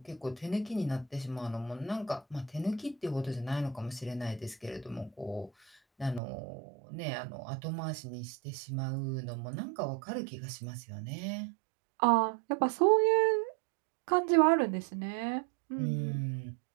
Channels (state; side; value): drops out; left; at 6.2 s